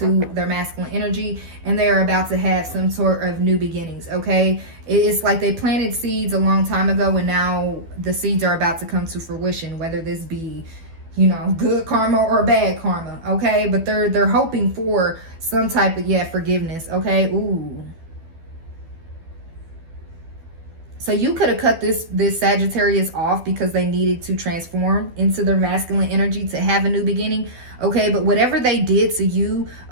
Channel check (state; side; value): late; left; 12 ms